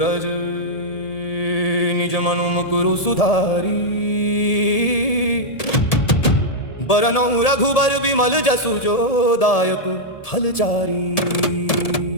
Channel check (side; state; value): right; late; 1.7 ms